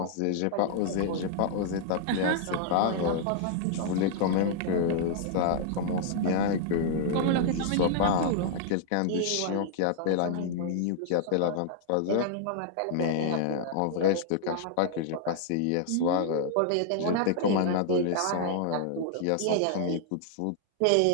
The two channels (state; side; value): different; both; correlation -0.01